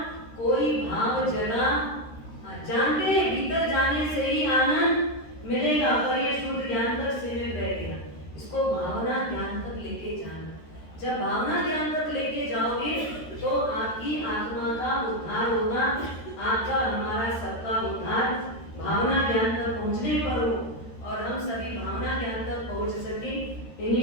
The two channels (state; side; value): late; right; 13 ms